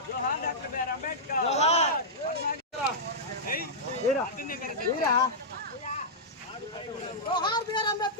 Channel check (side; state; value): both; normal; correlation -0.11